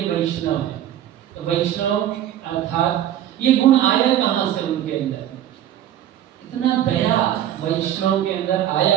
वैष्णव है। तो वैष्णव अर्थात ये गुण आया कहाँ से उनके अंदर? इतना दया वैष्णव के अंदर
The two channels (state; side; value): quieter; left; 11.5 dB